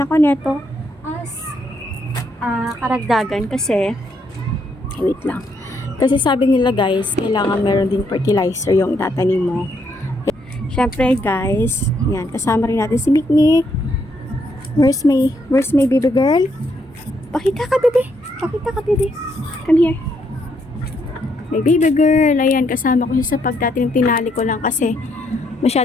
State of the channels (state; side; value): normal; both; correlation 0.74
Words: neto as karagdagan kasi, wait lang. Kasi sabi nila guys, kailangan meron din fertilizer yung itatanim mo. Syempre guys, yan, kasama rin natin si Mikmik. Where's my baby girl? Pakita ka, bebe. Pakita ka, bebe. Come here. My baby girl. Ayan, kasama ko siya sa pagtatanim. Tinali ko lang kasi